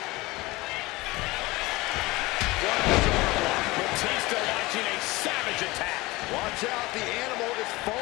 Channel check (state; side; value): quieter; right; 21.3 dB